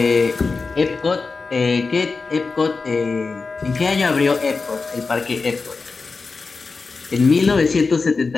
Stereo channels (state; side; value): quieter; right; 4.3 dB